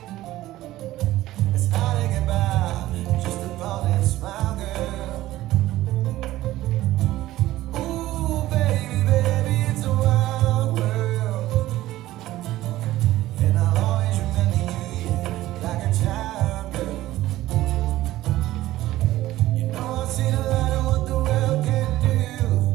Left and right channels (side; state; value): left; quieter; 15.6 dB